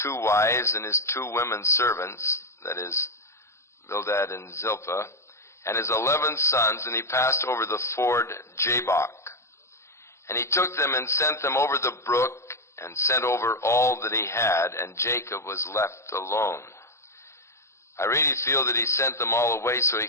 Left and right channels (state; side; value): late; right; 0.13 ms